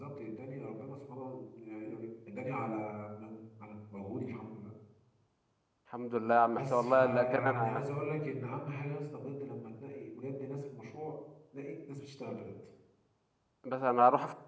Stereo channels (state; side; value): identical; both; correlation 1.00